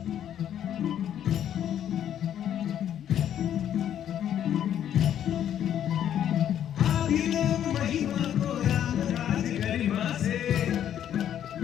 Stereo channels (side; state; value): right; quieter; 10.2 dB